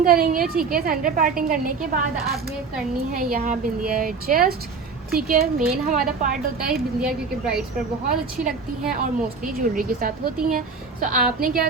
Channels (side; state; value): left; quieter; 4.8 dB